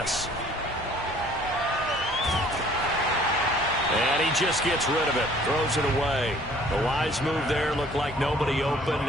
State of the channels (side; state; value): both; normal; correlation 0.55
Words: And he just gets rid of it, throws it away. The wise move there, looked like nobody open,